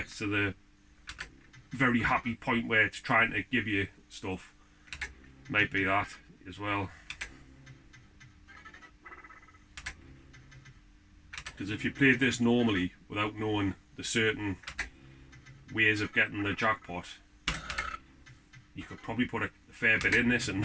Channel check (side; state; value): both; identical; correlation 1.00